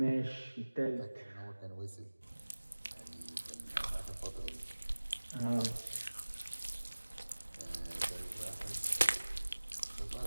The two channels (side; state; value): both; inverted; correlation -1.00